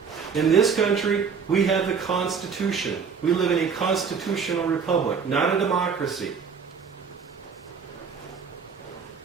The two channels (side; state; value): left; quieter; 6.0 dB